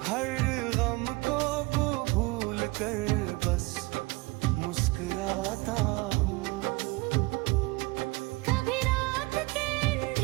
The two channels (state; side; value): quieter; left; 23.5 dB